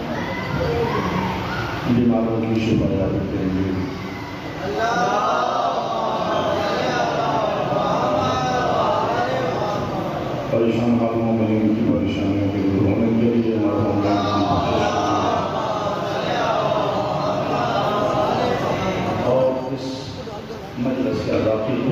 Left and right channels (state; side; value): identical; both; correlation 1.00